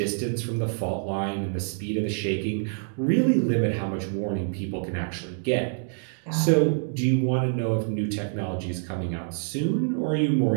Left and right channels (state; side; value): silent; left; digital silence